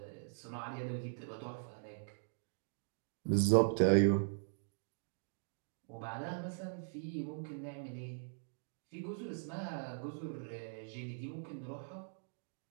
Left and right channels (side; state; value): left; silent; digital silence